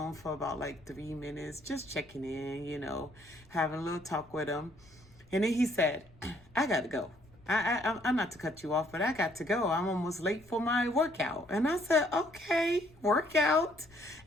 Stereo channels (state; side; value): noise; left; rumble, 27 dB below the sound